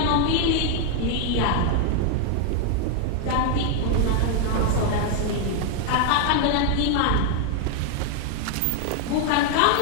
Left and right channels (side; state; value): both; different; correlation 0.00